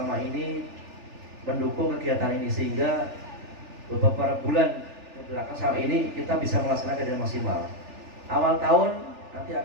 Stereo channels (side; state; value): left; late; 3.4 ms